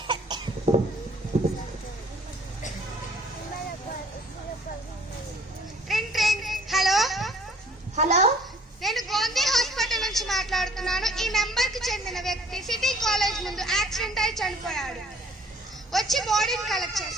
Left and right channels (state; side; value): normal; both; correlation 0.56